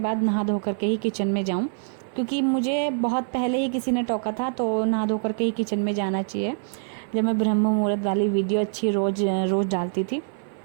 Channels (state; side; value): silent; left; 56 dB below the other